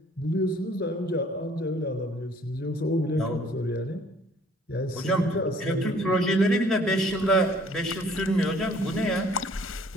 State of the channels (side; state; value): both; normal; correlation 0.57